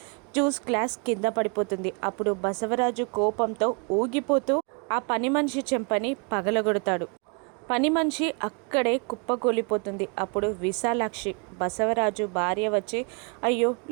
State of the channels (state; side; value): quieter; left; 35.4 dB